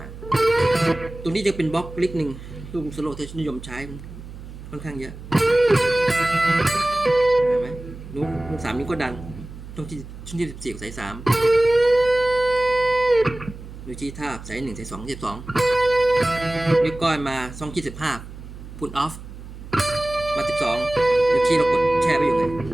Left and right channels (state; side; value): noise; right; hum, 14 dB below the sound